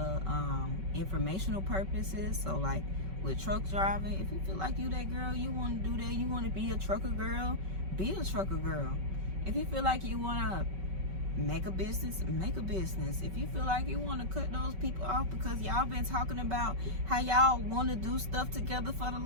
informational purposes. So like with truck driving, if you feel like you that girl, you want to do that, you want to be a trucker girl, be a trucker girl. If you feel like you want to make a business, make a business. If you feel like you want to cut those people off because y'all been talking about how y'all want to do stuff together for the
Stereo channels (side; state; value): left; late; 5.3 ms